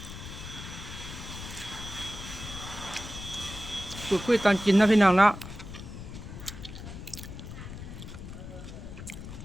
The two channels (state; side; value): noise; left; rumble, 10 dB below the sound